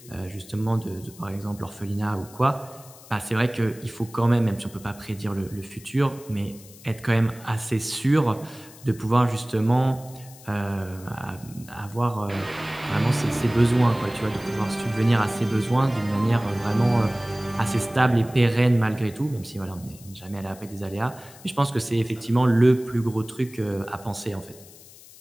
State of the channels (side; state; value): left; noise; hiss, 21 dB below the sound